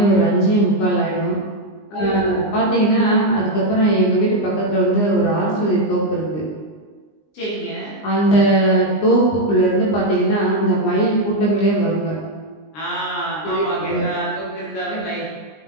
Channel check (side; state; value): right; late; 20 ms